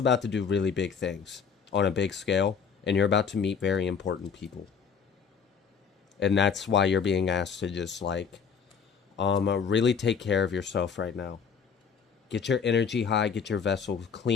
to do really big things on a big scale, and you're about to meet very important people. And that's why you're being asked to just, like, really take care of yourself right now. Get your energy high, get your vessel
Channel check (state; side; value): quieter; right; 6.4 dB